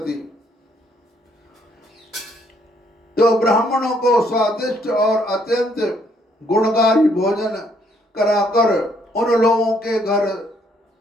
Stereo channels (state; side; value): normal; both; correlation 0.68